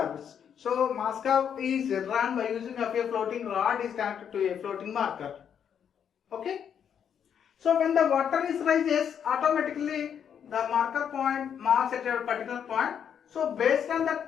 So mass curve is run by using of a floating rod is connected to a floating marker. Okay. So when the water is rises, automatically the marker point marks at a particular point. So based on that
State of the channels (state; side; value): quieter; right; 8.2 dB